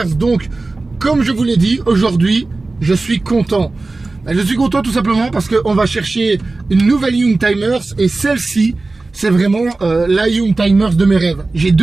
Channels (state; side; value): quieter; left; 3.4 dB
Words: Donc, comme je vous l'ai dit, aujourd'hui, je suis content. Je suis content tout simplement parce qu'on va chercher une nouvelle Youngtimers et celle-ci, c'est vraiment la Youngtimers de mes rêves. J'ai